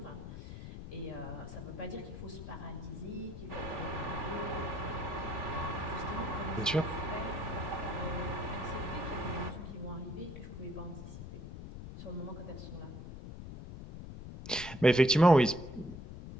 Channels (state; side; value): noise; left; rumble, 10 dB below the sound